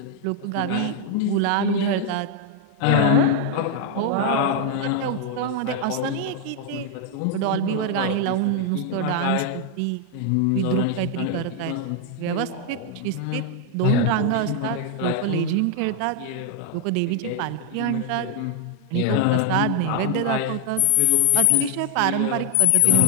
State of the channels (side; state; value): both; different; correlation 0.00